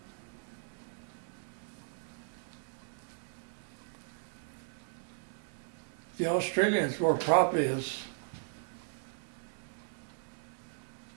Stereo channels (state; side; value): silent; left; digital silence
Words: the Australians were probably as